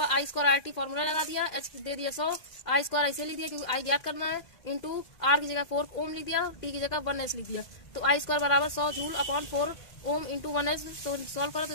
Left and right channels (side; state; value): right; late; 2.1 ms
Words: I² RT फॉर्मूला लगा दिया। H दे दिया 100, I² ऐसे लिख दिया क्योंकि I ज्ञात करना है, इंटू R की जगह 4 ओम लिख दिया, T की जगह 1S लिख दिया। तो I² बराबर 100 joule upon 4 ohm into 1S। तो सॉल्व करो तो